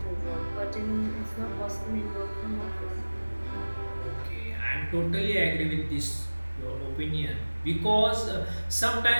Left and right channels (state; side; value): inverted; both; correlation -1.00